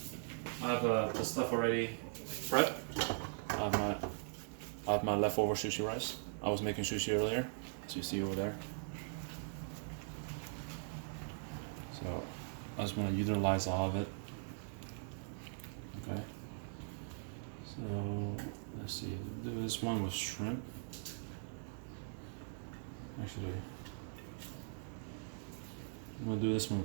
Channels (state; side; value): silent; left; digital silence